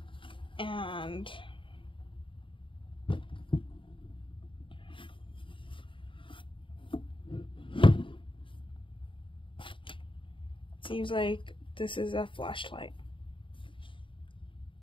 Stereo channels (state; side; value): late; right; 0.25 ms